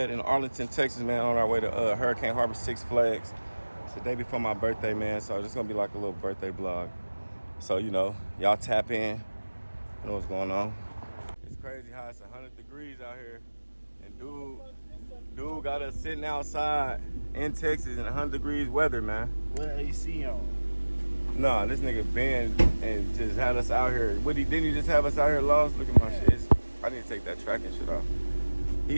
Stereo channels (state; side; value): inverted; both; correlation -1.00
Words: In Arlington, Texas, man, on our way to Hurricane Harbor, Six Flags. It's the day before my birthday, man, so it's gonna be like a little birthday vlog. So, you know, y'all tap in, you know what's going on. It's crazy how it's 100 degrees out here, and dude got us sitting outside in Texas in 100 degrees weather, man. What AC on? Nah, this nigga Ben and just had us out here. Didn't he just have us out here lost? Look at my shit. I need to take that tracking shit off.